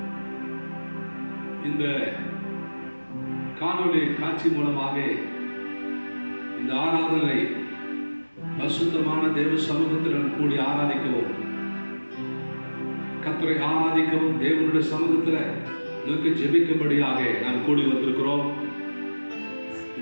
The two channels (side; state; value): both; inverted; correlation -1.00